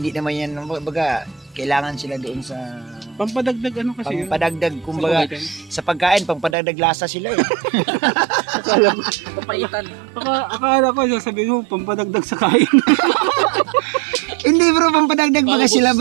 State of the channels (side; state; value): left; drops out; at 6.6 s